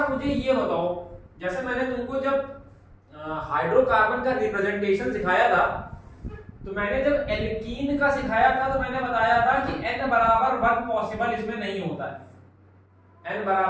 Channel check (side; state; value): both; identical; correlation 1.00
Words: मुझे ये बताओ, जैसे मैंने तुमको जब हाइड्रोकार्बन का रिप्रेजेंटेशन सिखाया था, तो मैंने जब एल्कीन का सिखाया था तो मैंने बताया था कि n बराबर 1 पॉसिबल इसमें नहीं होता है, n